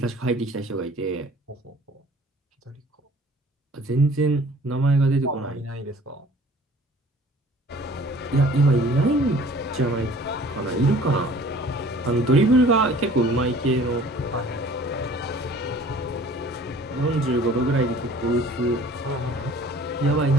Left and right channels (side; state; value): both; normal; correlation 0.50